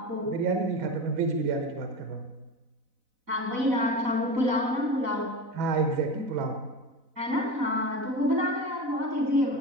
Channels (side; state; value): left; late; 4.0 ms